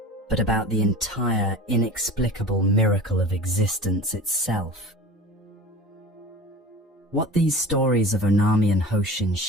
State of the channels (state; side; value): normal; both; correlation 0.37